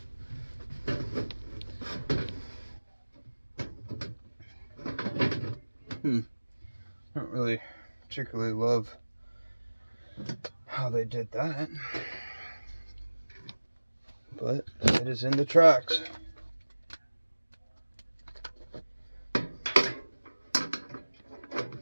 I don't really particularly love how they did that, but it is in the tracks.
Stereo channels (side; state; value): both; inverted; correlation -1.00